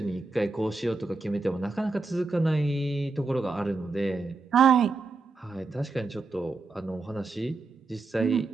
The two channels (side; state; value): left; quieter; 3.8 dB